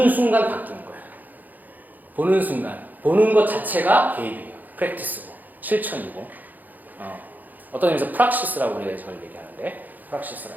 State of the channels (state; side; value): late; left; 0.084 ms